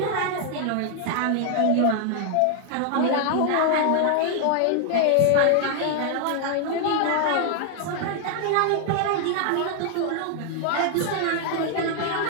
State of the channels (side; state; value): both; different; correlation 0.00